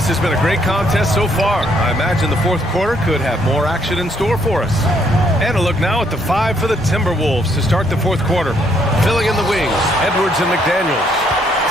has been a great contest so far. I imagine the 4th quarter could have more action in store for us. And a look now at the 5 for the Timberwolves to start the 4th quarter. Filling in the wings, Edwards and McDaniels.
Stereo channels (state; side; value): normal; both; correlation 0.69